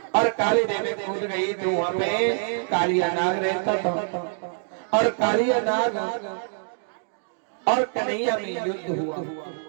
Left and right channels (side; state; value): left; silent; digital silence